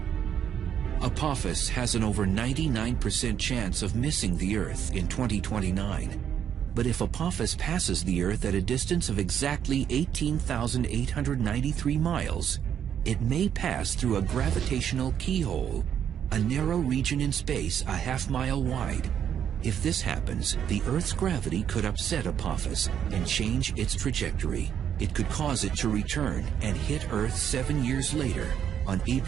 Apophis has an over 99% chance of missing the Earth in 2029. But if Apophis passes the Earth at a distance of exactly 18,893 miles, it may pass through a gravitational keyhole, a narrow region in space a half-mile wide. If this happens, the Earth's gravity could upset Apophis and change its trajectory. It could cause it to return and hit Earth 7 years later, on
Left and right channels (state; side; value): quieter; left; 9.0 dB